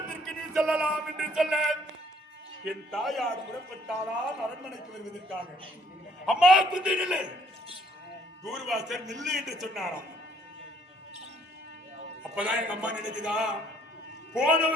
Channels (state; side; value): normal; both; correlation 0.63